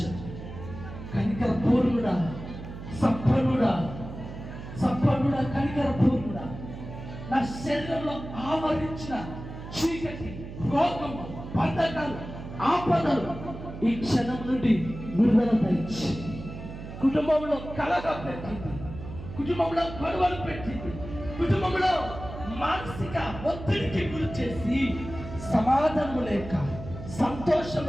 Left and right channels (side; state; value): right; noise; hum, 11 dB below the sound